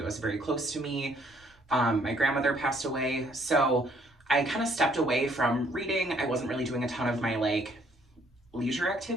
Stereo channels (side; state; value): both; normal; correlation 0.64